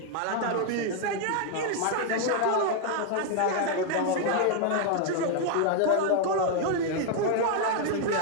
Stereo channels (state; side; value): different; both; correlation 0.00